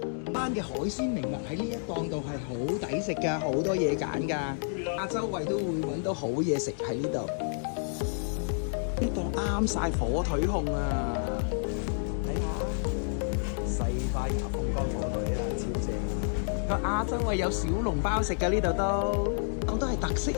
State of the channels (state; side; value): silent; right; digital silence